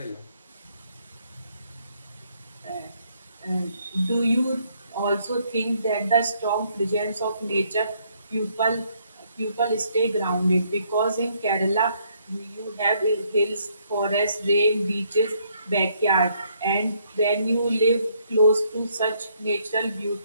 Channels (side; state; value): both; inverted; correlation -0.69